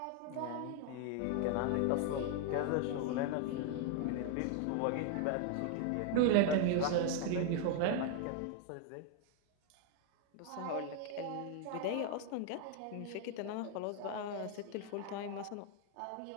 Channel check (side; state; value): both; different; correlation 0.00